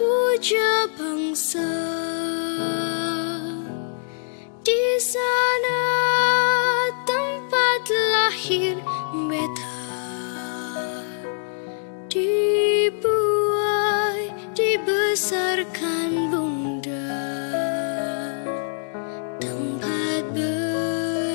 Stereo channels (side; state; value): right; silent; digital silence